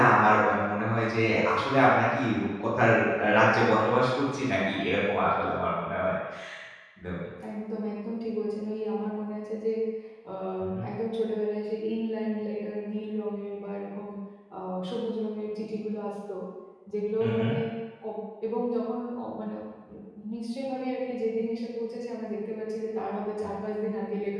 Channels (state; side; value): identical; both; correlation 1.00